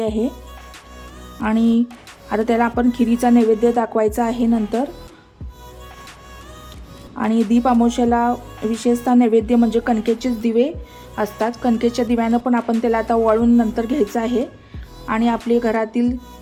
आणि आता त्याला आपण खिरीचा नैवेद्य दाखवायचा आहे नंतर। आणि दीप अमावस्येला विशेषतः नैवेद्य म्हणजे कणकेचेच दिवे असतात। कणकेच्या दिव्यानं पण आपण त्याला आता ओवाळून नंतर घ्यायचं आहे आणि आपले घरातील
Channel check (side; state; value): both; identical; correlation 1.00